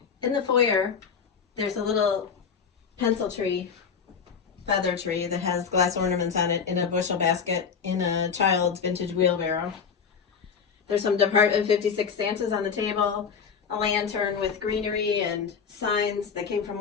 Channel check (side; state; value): right; quieter; 6.4 dB